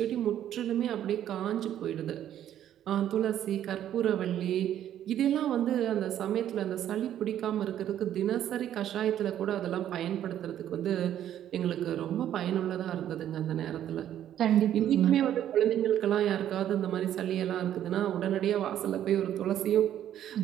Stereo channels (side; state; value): left; quieter; 11.0 dB